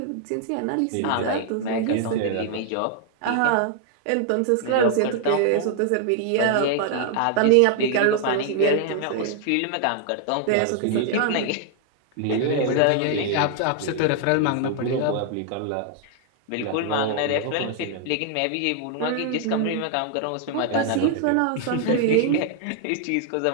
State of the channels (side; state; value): both; different; correlation 0.00